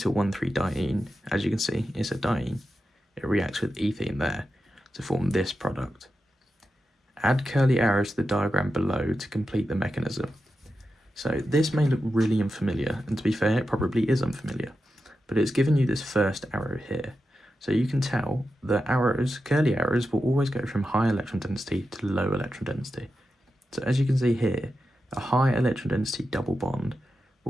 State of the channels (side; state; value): both; normal; correlation 0.90